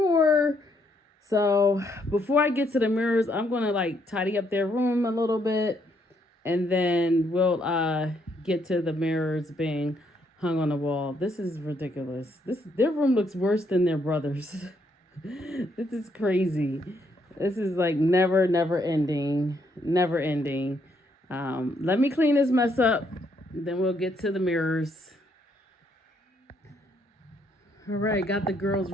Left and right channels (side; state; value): both; normal; correlation 0.72